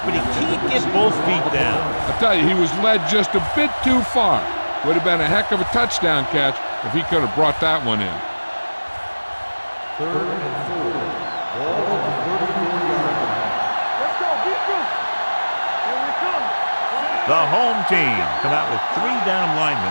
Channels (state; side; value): inverted; both; correlation -1.00